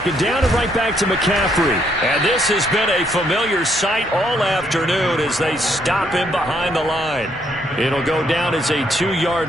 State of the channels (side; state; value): both; normal; correlation 0.72